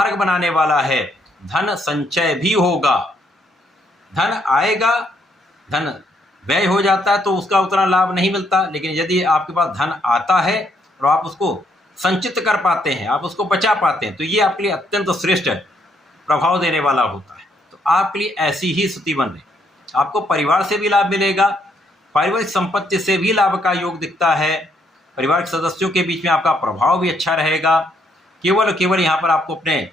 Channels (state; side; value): normal; both; correlation 0.72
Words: बनाने वाला है। धन संचय भी होगा, धन आएगा, धन व्यय हो जाता है तो उसका उतना लाभ नहीं मिलता, लेकिन यदि आपके पास धन आता है और आप उसको संचित कर पाते हैं, आप उसको बचा पाते हैं, तो ये आपके लिए अत्यंत श्रेष्ठ प्रभाव देने वाला होता है। तो आपके लिए ऐसी ही स्थिति बन रही। आपको परिवार से भी लाभ मिलेगा, पारिवारिक संपत्ति से भी लाभ का योग दिखता है, परिवार के सदस्यों के बीच में आपका प्रभाव भी अच्छा रहेगा। केवल यहाँ पर आपको अपने